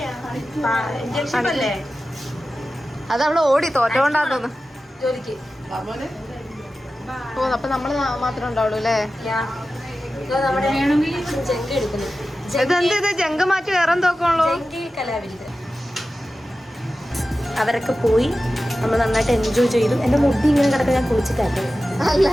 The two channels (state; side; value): normal; both; correlation 0.94